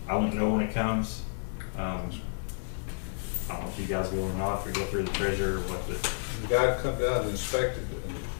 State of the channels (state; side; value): silent; right; digital silence